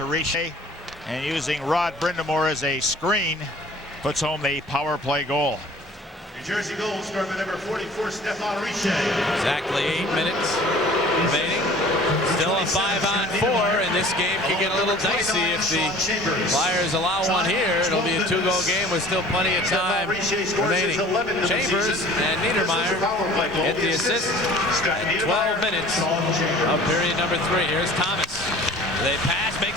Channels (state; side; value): normal; both; correlation 0.47